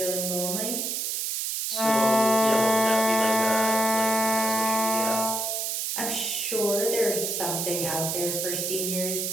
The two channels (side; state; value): right; noise; hiss, 1 dB below the sound